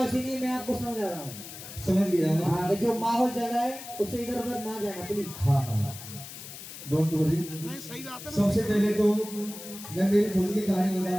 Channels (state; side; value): noise; left; hiss, 13 dB below the sound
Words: इसीलिए मैं आपको समझा रहा हूँ। समझ गया मैं। हाँ, जो माहौल चल रहा है उससे इधर उधर ना जाना प्लीज। हाँ डोंट वरी। सबसे पहले तो मैं मेरी खुद की कहानी